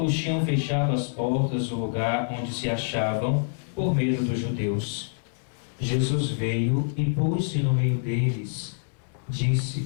tinham fechado as portas do lugar onde se achavam, por medo dos judeus. Jesus veio e pôs-se no meio deles.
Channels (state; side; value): silent; right; 61 dB below the other